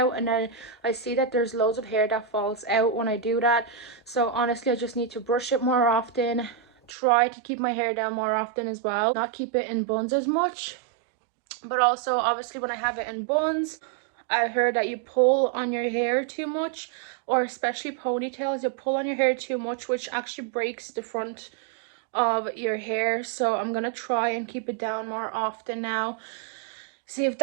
and then I see that there's loads of hair that falls out when I do that. So honestly I just need to brush it more often, try to keep my hair down more often as well, not keep it in buns as much. But also obviously when I have it in buns, I heard that you pull on your hair too much, or especially ponytails, you pull on your hair too much, which actually breaks the front of your hair. So I'm gonna try and keep it down more often now, see if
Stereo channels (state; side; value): drops out; left; at 6.9 s